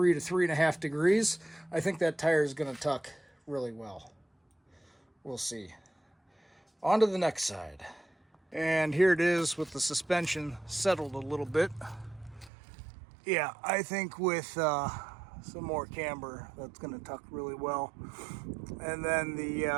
to 3.5 degrees, I think that tire is going to tuck really well. We'll see. On to the next side. And here it is with the suspension settled a little bit. Yeah, I think with some more camber, that's going to tuck really well. And then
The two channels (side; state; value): left; drops out; at 12.5 s